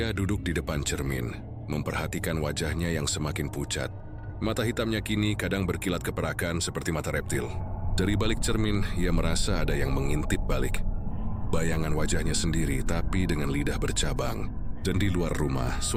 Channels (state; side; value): identical; both; correlation 1.00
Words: duduk di depan cermin, memperhatikan wajahnya yang semakin pucat. Mata hitamnya kini kadang berkilat keperakan seperti mata reptil. Dari balik cermin, ia merasa ada yang mengintip balik. Bayangan wajahnya sendiri, tapi dengan lidah bercabang. Dan di luar rumah,